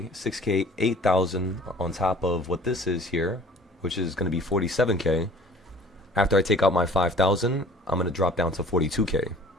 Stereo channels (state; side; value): normal; both; correlation 0.49